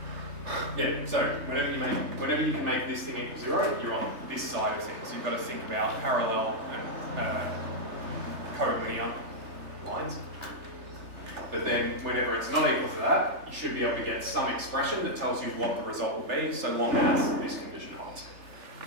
Yeah, so whenever you can make this thing equal 0, you're on this side of things. You've got to think about parallel and collinear lines. But then whenever it's not equal to that, you should be able to get some expression that tells you what the result will be, so long as this condition holds.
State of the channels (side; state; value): left; late; 3.3 ms